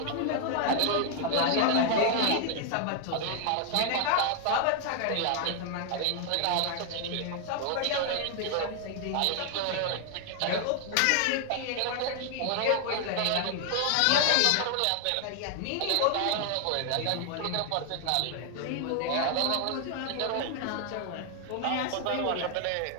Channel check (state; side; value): different; both; correlation 0.00